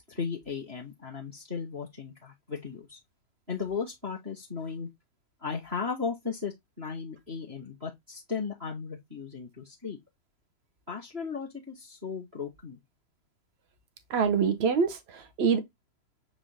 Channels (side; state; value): left; late; 3.0 ms